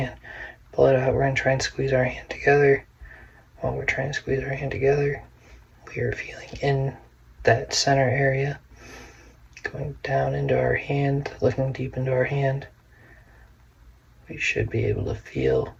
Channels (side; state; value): both; identical; correlation 1.00